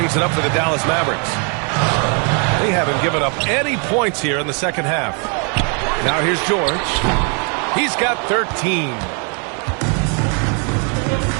it up for the Dallas Mavericks. They haven't given up any points here in the second half. Now here's George. He's got 13.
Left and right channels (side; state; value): left; quieter; 37.7 dB